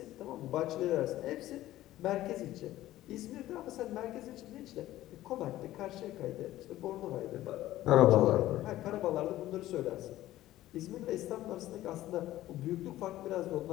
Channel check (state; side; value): quieter; right; 14.9 dB